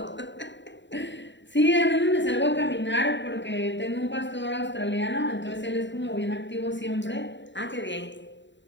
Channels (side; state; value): right; late; 0.52 ms